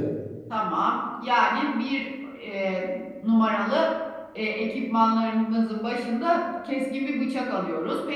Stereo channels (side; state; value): both; identical; correlation 1.00